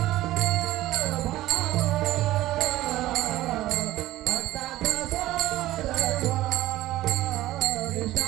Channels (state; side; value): quieter; left; 15.8 dB